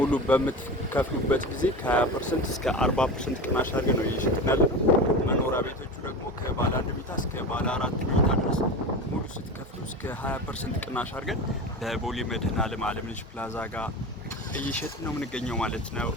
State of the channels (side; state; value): both; normal; correlation 0.28